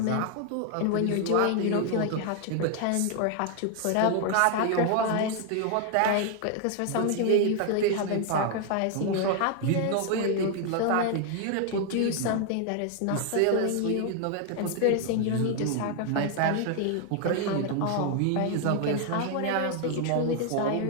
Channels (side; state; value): both; different; correlation 0.00